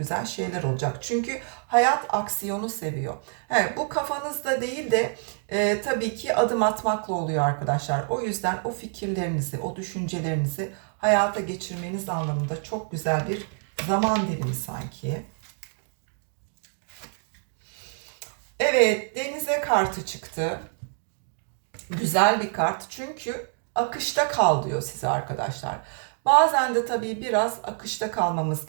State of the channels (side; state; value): left; silent; 57 dB below the other